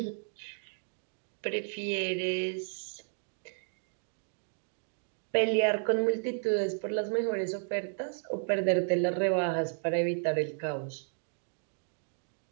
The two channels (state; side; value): silent; left; digital silence